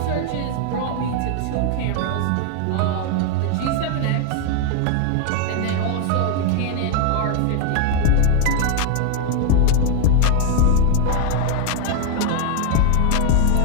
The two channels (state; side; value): different; both; correlation 0.01